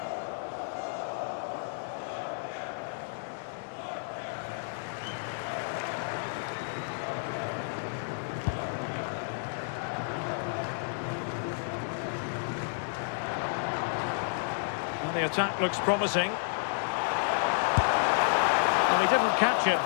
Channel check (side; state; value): right; silent; digital silence